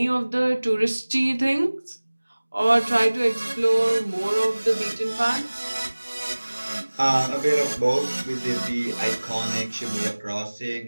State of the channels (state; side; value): inverted; both; correlation -1.00